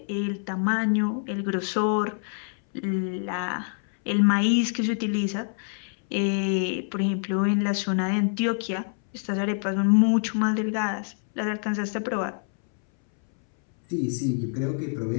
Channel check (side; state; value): right; silent; 61 dB below the other